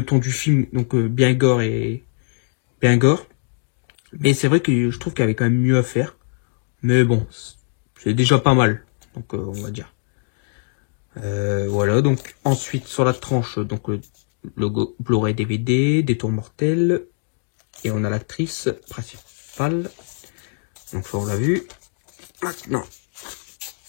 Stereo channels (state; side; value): silent; right; digital silence